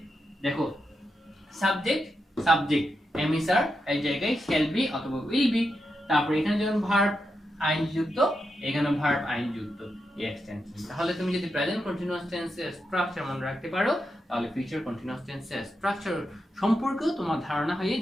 দেখো সাবজেক্ট সাবজেক্ট এম ইজ আর এই জায়গায় শ্যাল বি অথবা উইল বি। তারপর এখানে যেমন ভার্ব আইনজি যুক্ত, এখানে ভার্ব আইনজি যুক্ত এই এক্সটেনশন। তাহলে তুমি যদি প্রেজেন্ট কন্টিনিউয়াস টেন্সের স্ট্রাকচার মনে রাখতে পারো তাহলে ফিউচার কন্টিনিউয়াস টেন্সের স্ট্রাকচার সম্পর্কেও তোমার ধারণা হয়ে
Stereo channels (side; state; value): both; normal; correlation 0.86